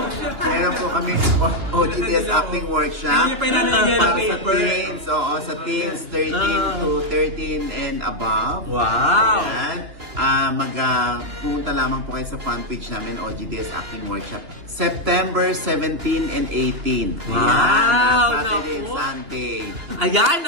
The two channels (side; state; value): left; late; 2.9 ms